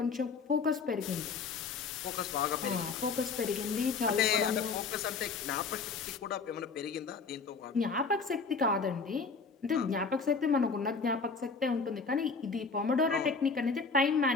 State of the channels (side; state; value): right; quieter; 4.8 dB